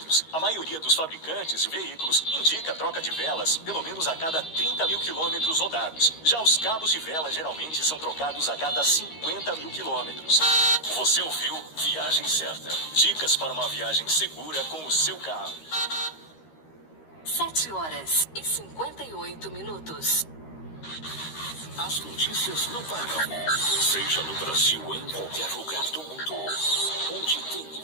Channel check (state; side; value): late; right; 13 ms